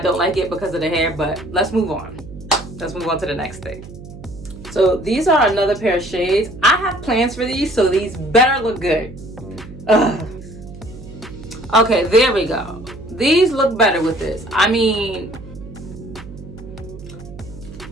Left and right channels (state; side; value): noise; right; hum, 15 dB below the sound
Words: like it because of the hair, but let's move on. Let's move on to the next thing. So these are another pair of shades. I have plans for these, so these better look good. Ugh. Okay, there we go. These look better with this. I mean,